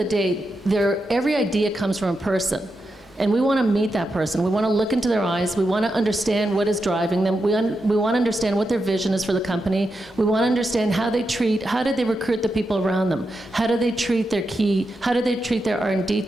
day, every idea comes from a person. And we want to meet that person. We want to look into their eyes. We want to understand what is driving them. We want to understand what their vision is for the company. We want to understand how did they recruit the people around them? How do they treat how do they treat their R&D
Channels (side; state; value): both; normal; correlation 0.87